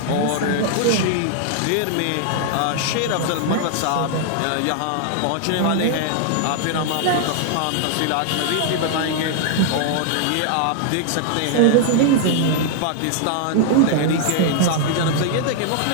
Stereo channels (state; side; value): different; both; correlation 0.00